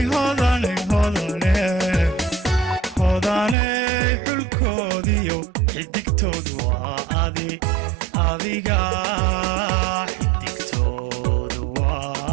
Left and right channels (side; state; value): left; drops out; at 3.6 s